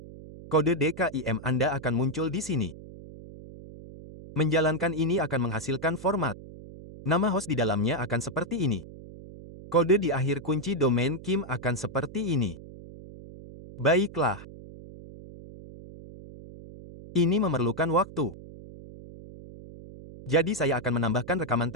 Kode DKIM Anda akan muncul di sini. Menjalankan ini akan menghasilkan format. Nama host di dalamnya akan seperti ini. Kode di akhir kunci domain KIM akan seperti ini. Baiklah. Ini memerlukan waktu. Jadi saya akan menambahkan rekaman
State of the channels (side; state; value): right; noise; hum, 16 dB below the sound